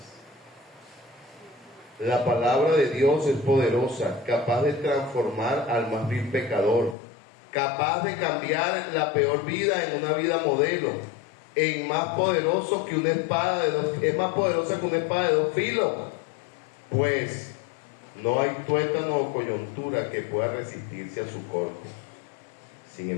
La palabra de Dios es poderosa, capaz de transformar al más vil pecador, capaz de cambiar la peor vida en una vida modelo, es más poderoso que una espada es más poderosa que una espada de dos filos, pues no hay tuétano o coyuntura que pueda resistirse a su corte. Sin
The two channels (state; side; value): drops out; right; at 7.0 s